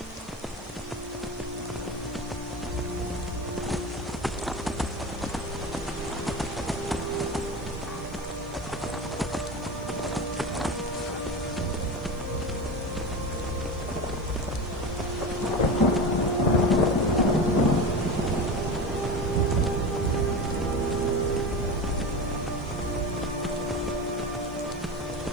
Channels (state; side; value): noise; left; hiss, 26 dB below the sound